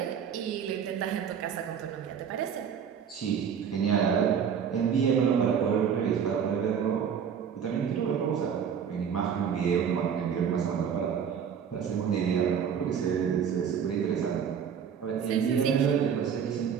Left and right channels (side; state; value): left; quieter; 7.7 dB